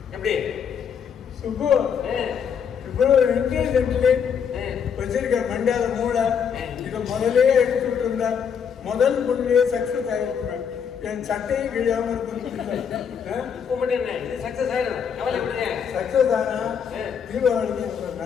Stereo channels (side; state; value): right; quieter; 7.3 dB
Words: எப்படி சுப்பு இவ்வளவு இன்டெலிஜென்ட்லி வச்சிருக்க மண்டால மூளை இதை முதலே எடுத்துட்டு இருந்தா முதல் பொண்ணுலயே சக்சஸ் ஆகிருக்கிறேன். என் சட்டையும் கிழியாம இது சக்சஸ் ஆயிடும், கவலை விடுங்க. சக்சஸ் ஆனா தீபாவளிக்கு